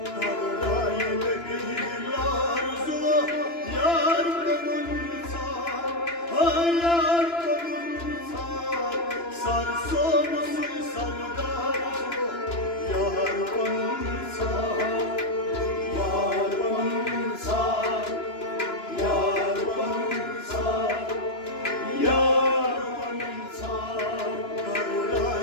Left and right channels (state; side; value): late; right; 2.9 ms